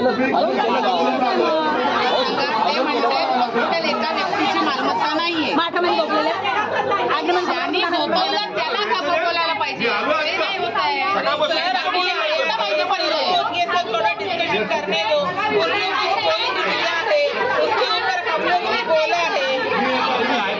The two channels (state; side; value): identical; both; correlation 1.00